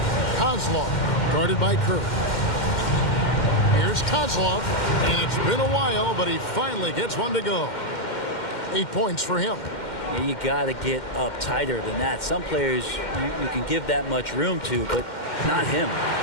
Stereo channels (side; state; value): right; late; 2.1 ms